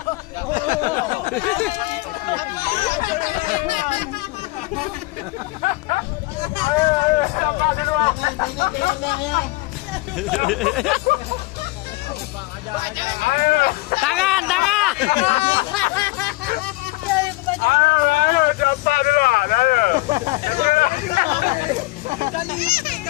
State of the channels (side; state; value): right; quieter; 22.0 dB